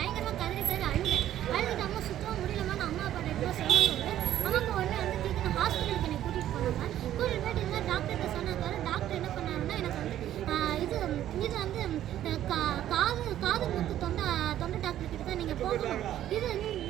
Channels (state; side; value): quieter; left; 12.1 dB